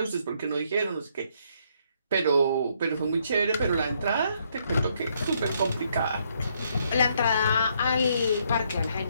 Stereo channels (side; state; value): both; inverted; correlation -0.71